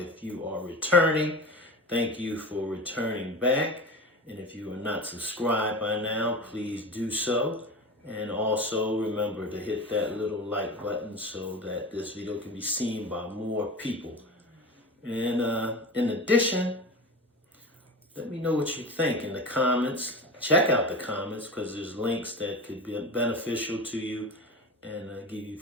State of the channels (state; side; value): normal; both; correlation 0.29